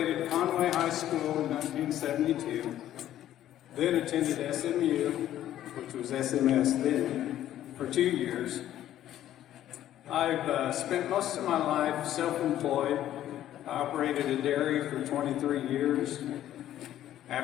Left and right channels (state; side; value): quieter; right; 12.3 dB